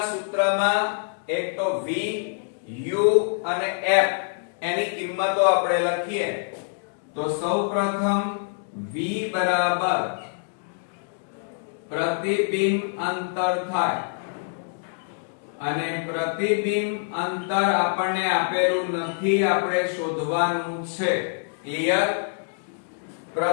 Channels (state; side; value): silent; right; digital silence